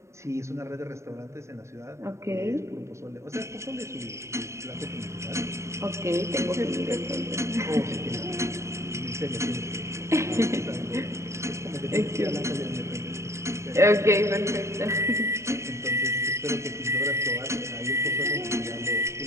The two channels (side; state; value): left; late; 0.14 ms